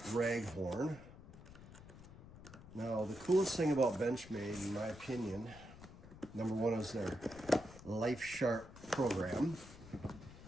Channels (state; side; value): noise; left; rumble, 17 dB below the sound